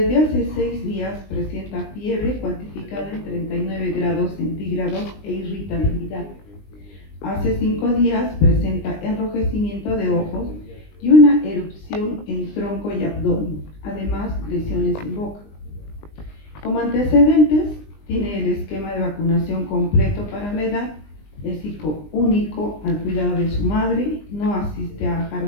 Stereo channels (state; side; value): late; right; 20 ms